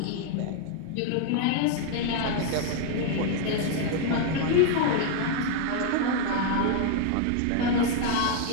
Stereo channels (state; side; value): different; both; correlation 0.00